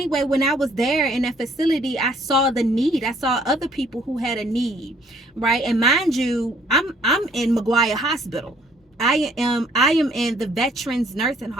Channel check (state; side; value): normal; both; correlation 0.63